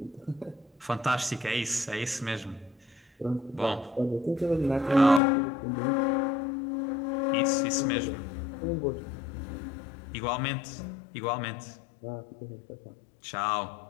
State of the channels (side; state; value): right; drops out; at 5.2 s